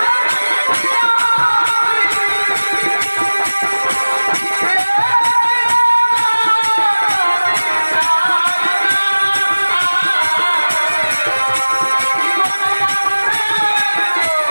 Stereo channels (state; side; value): inverted; both; correlation -1.00